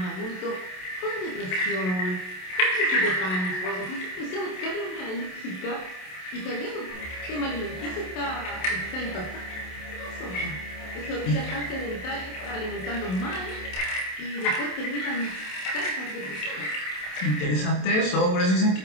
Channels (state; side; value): late; right; 27 ms